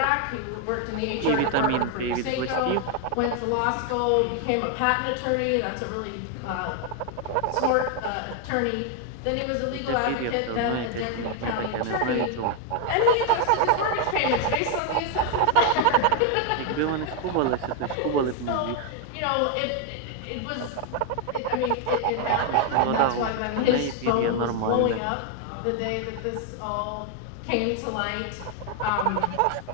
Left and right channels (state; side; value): different; both; correlation 0.01